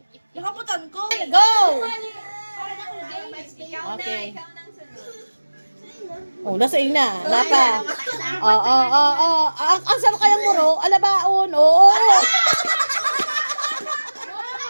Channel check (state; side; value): inverted; both; correlation -1.00